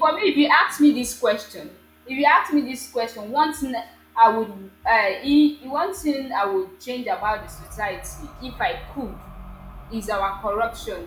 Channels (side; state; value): both; identical; correlation 1.00